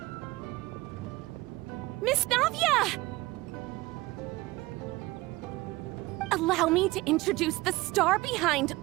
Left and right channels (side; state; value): left; quieter; 20.2 dB